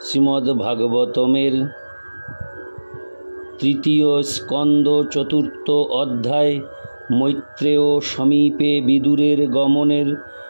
শ্রীমদ্ ভাগবতমের 3য় স্কন্দ 4র্থ অধ্যায় মৈত্রেয় সমীপে বিদুরের গমনের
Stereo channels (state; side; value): inverted; both; correlation -1.00